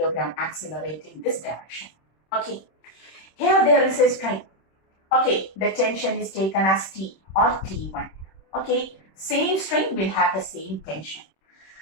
accelerates in this direction. Okay, here there is a string. Okay, the tension is taken as T or T1. Okay, same string will have the same tension.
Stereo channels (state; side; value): late; right; 26 ms